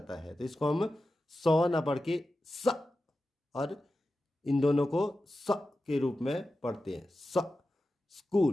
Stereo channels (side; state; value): both; normal; correlation 0.92